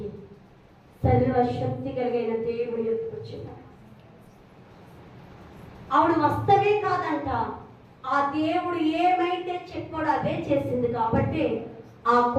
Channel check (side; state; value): both; identical; correlation 1.00